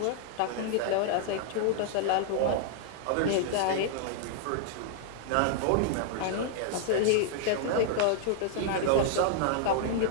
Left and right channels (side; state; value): both; different; correlation 0.00